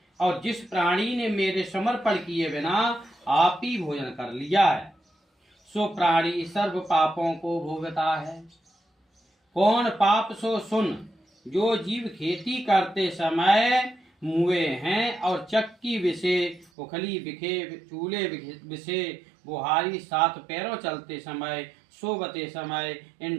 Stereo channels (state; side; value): drops out; left; at 16.7 s